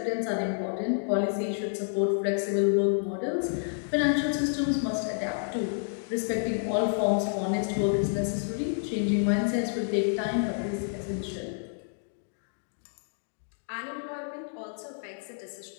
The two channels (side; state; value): right; silent; digital silence